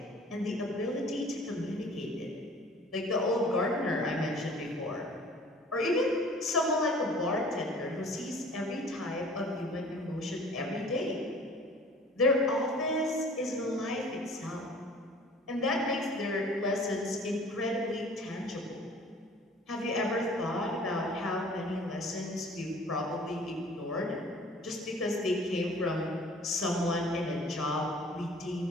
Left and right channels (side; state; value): both; normal; correlation 0.49